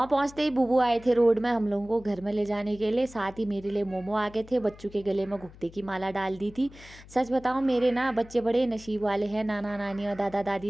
पहुँचते ही बुबू आए थे रोड में हम लोगों को घर में ले जाने के लिए। साथ ही मेरे लिए मोमो आ गए थे। बच्चों के गले में घुघते की माला डाल दी थी। सच बताऊँ मेरे ना बच्चे बड़े नसीब वाले हैं। नाना नानी और दादा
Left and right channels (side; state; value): left; noise; hum, 20 dB below the sound